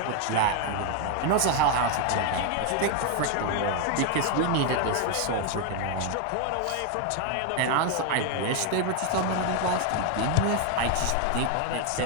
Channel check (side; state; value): both; different; correlation 0.01